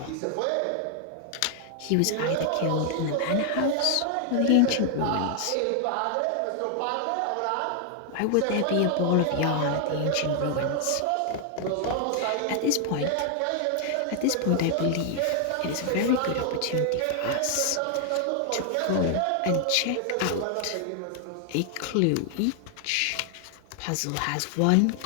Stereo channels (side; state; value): both; different; correlation 0.00